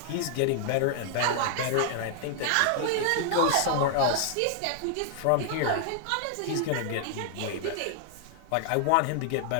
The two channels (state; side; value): different; both; correlation 0.00